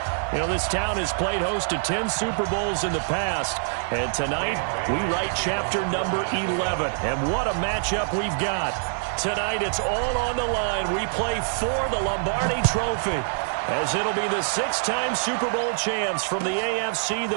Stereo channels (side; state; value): left; silent; digital silence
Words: You know, this town has played host to 10 Super Bowls in the past, and tonight we write chapter number 11. And what a matchup we've got. Tonight it's all on the line. We play for the Lombardi Trophy, as it'll be the six-time Super Bowl champs from the AFC,